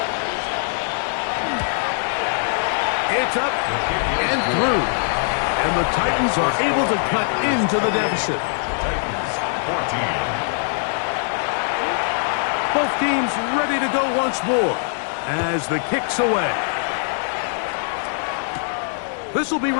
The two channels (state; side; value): silent; right; digital silence